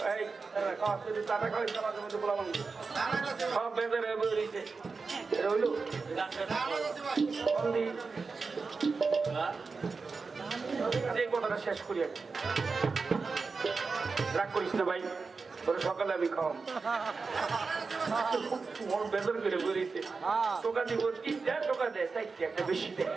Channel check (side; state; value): left; quieter; 4.5 dB